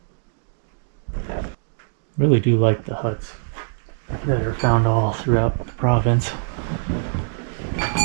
Really do like the huts that are found all throughout the province.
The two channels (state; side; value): silent; left; digital silence